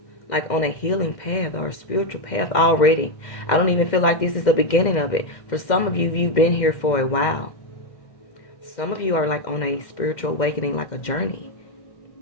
like on a healing path or a spiritual path already. I don't even feel like this is the beginning of it. For some of you, you've been here for a while. Some of you are like on a spiritual awakening, like a journey.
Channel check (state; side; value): late; right; 2.1 ms